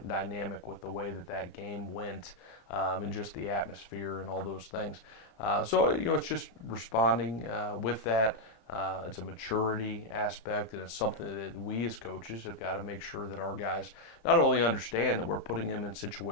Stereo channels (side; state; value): right; late; 34 ms